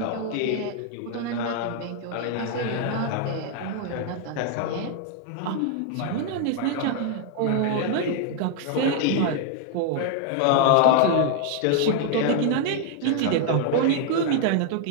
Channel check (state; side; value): different; both; correlation 0.00